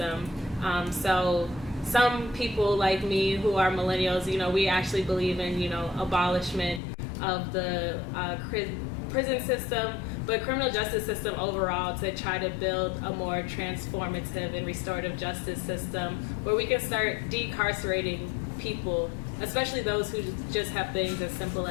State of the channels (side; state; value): right; drops out; at 6.8 s